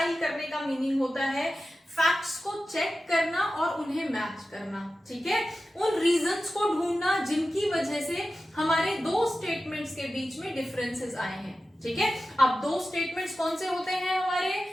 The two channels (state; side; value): normal; both; correlation 0.94